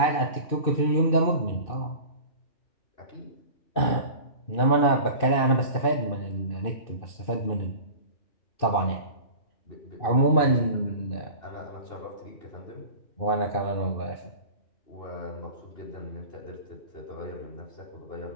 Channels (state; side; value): late; right; 2.6 ms